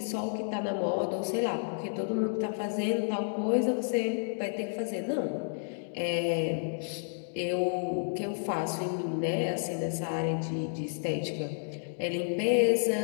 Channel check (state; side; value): silent; right; digital silence